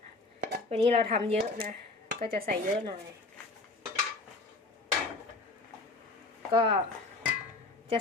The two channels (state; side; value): quieter; right; 3.3 dB